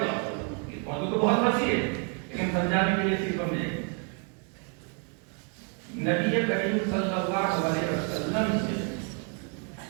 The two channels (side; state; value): left; quieter; 38.9 dB